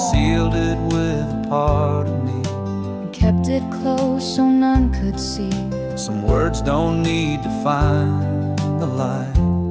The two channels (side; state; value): both; identical; correlation 1.00